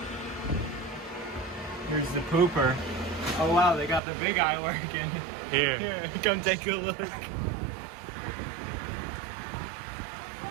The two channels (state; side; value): drops out; left; at 4.0 s